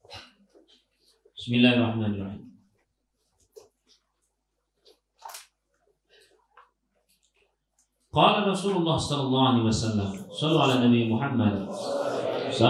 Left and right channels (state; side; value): identical; both; correlation 1.00